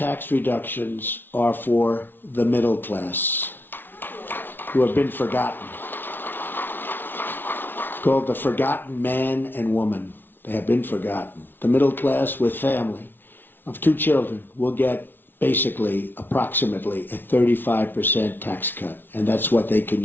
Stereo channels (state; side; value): late; right; 0.098 ms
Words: reductions are for the middle class, who have been forgotten. Called the forgotten man and woman. They have been forgotten. The middle class with family of 2 children will get basically approximately a 35% tax cut, and that's what they can